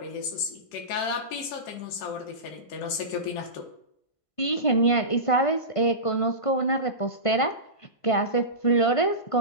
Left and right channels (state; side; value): late; right; 1.5 ms